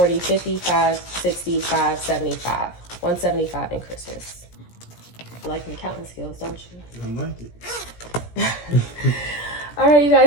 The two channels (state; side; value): late; right; 17 ms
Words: 55, 65, 75. 175 in Christmas. You like my counting skills, don't you? I like it. All right, you